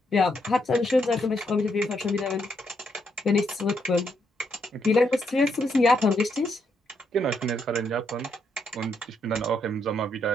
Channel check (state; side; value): normal; both; correlation 0.77